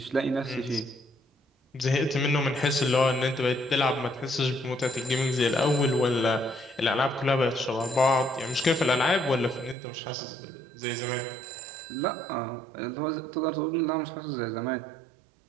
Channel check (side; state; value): left; drops out; at 9.8 s